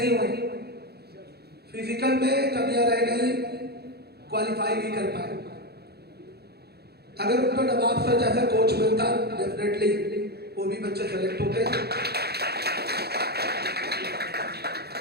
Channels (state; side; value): late; left; 0.47 ms